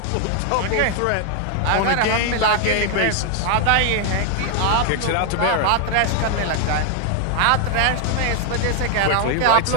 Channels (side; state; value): both; different; correlation 0.00